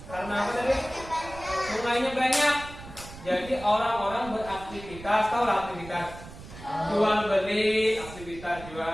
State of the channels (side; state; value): right; noise; rumble, 15 dB below the sound